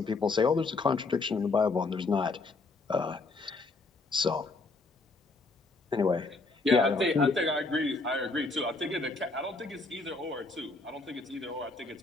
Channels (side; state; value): right; quieter; 3.5 dB